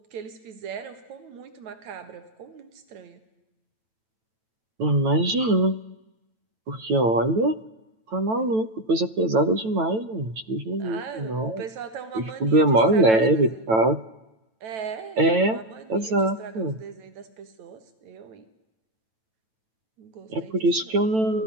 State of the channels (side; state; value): left; late; 9.1 ms